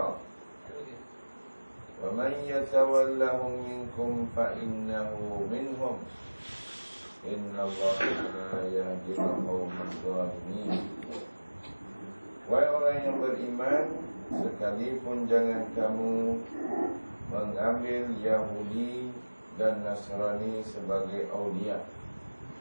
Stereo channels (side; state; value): both; inverted; correlation -1.00